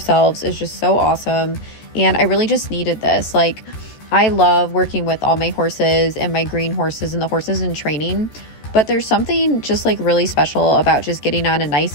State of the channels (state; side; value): late; right; 14 ms